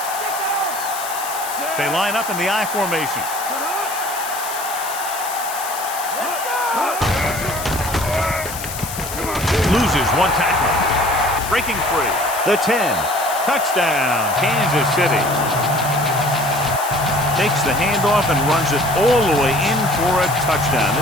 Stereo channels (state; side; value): noise; left; hiss, 9 dB below the sound